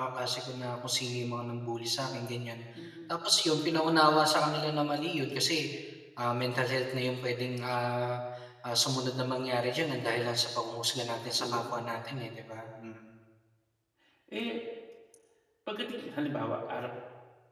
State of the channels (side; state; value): both; identical; correlation 1.00